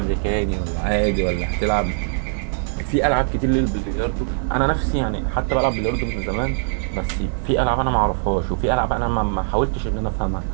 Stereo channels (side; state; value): left; silent; digital silence